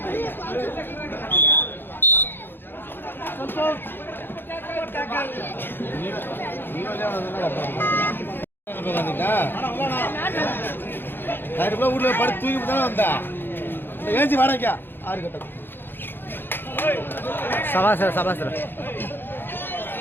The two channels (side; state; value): right; late; 0.10 ms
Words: ஊர்ல படுத்து தூக்கி தானே வந்தா ஏஞ்சி வாடகைக்கா 6 கட்டம் சபாசர சபாசர